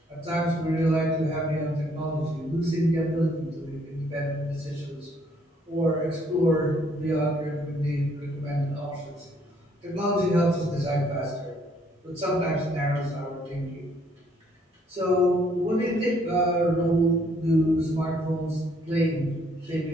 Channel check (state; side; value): normal; both; correlation 0.66